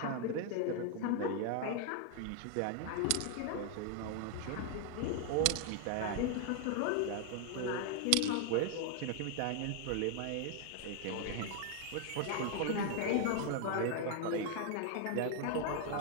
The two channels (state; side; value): different; both; correlation 0.00